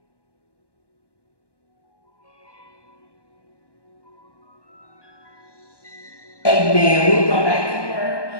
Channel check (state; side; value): late; right; 1.2 ms